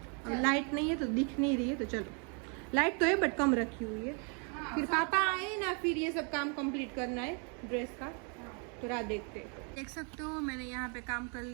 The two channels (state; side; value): quieter; left; 37.5 dB